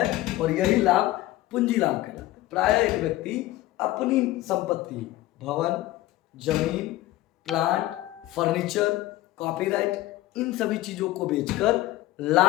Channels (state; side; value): quieter; right; 16.6 dB